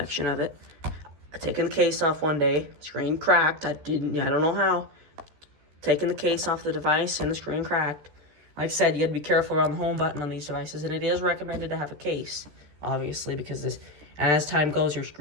of it. I taken the case off one day. Screen cracked. I don't know how. Taking the case off the device and the screen cracked. Like I said, you got to be careful around the home button on these devices, and it is recommended to have a case, obviously, because as time goes, your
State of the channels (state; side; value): late; left; 14 ms